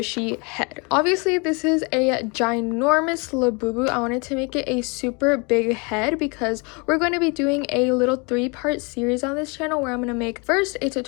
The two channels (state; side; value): quieter; right; 30.5 dB